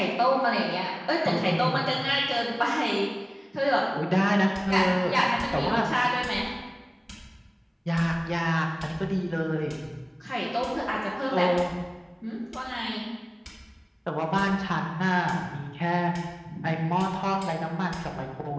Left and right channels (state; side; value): identical; both; correlation 1.00